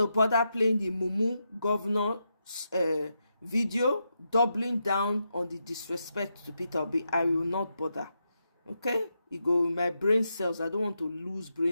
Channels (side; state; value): both; inverted; correlation -0.85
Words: bother playing the Mumu governor's video, doubling down on the disrespect to Peter Obi. I will not bother. Okay? You go in my brain cells. I don't want to lose